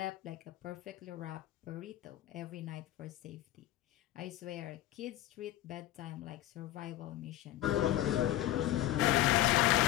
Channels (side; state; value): right; quieter; 14.3 dB